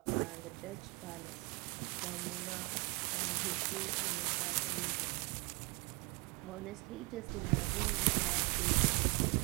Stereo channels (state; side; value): quieter; left; 27.8 dB